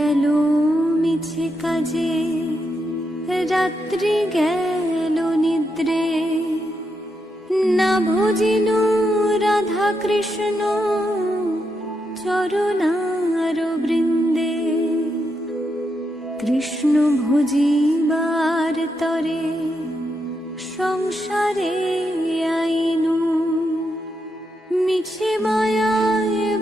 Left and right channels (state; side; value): normal; both; correlation 0.83